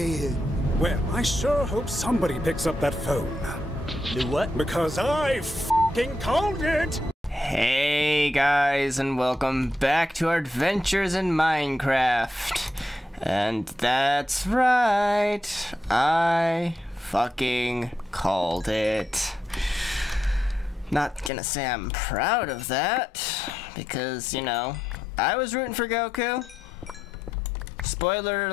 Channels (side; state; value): both; normal; correlation 0.84